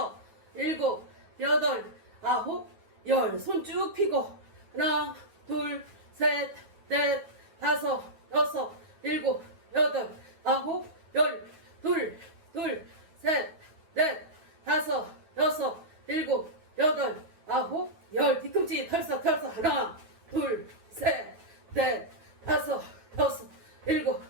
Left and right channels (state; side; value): late; left; 9.3 ms